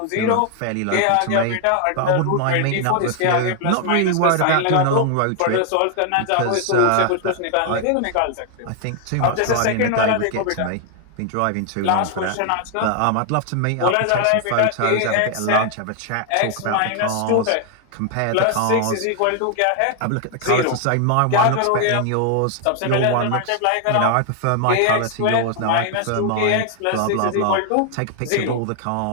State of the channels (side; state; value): both; different; correlation 0.00